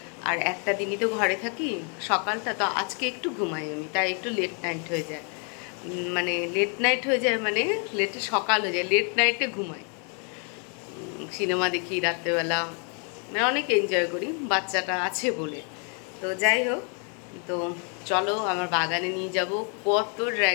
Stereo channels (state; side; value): quieter; right; 39.6 dB